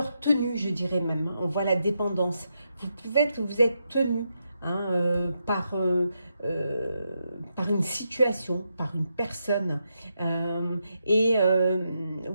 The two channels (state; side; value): inverted; both; correlation -0.83